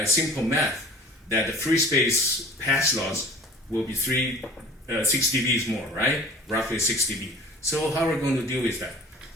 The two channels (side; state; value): both; normal; correlation 0.44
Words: Simple math that the free space pass loss will be 6 dB more, right? Roughly 6 dB. So how are we going to deal with that?